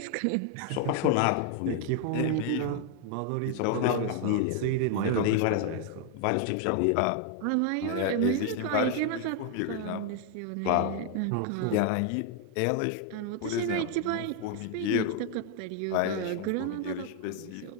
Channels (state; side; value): different; both; correlation 0.00